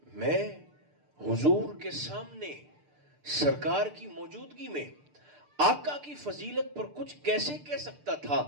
میں حضور کے سامنے سرکار کی موجودگی میں آقا کی فضیلت پر کچھ کیسے کہہ سکتا تھا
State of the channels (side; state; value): left; late; 6.7 ms